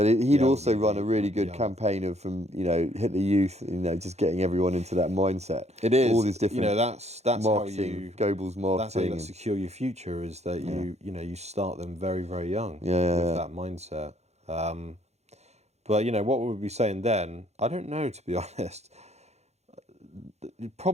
he'd also run a really good campaign of Hitler Youth, just getting everyone into that mindset. It is all these different. That's marketing, Goebbels marketing. That's how you secure your future. Is that you start them very, very young with that mindset. But what would we be saying then? I don't know, to be honest.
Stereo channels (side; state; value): left; late; 0.31 ms